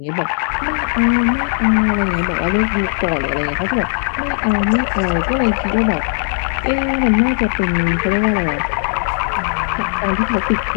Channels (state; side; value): silent; right; digital silence